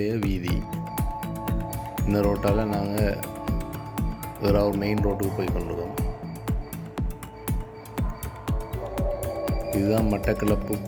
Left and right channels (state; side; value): identical; both; correlation 1.00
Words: வீதி. இந்த ரோட்டால் நாங்கள் ஏறாவூர் மெயின் ரோட்டுக்கு போய் கொண்டிருக்கோம். இதுதான் மட்டக்களப்பு